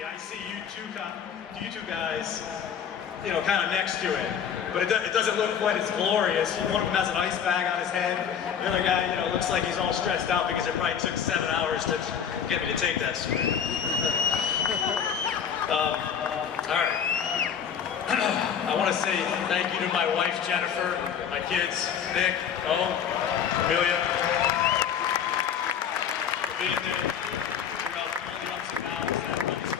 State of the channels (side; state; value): right; quieter; 8.0 dB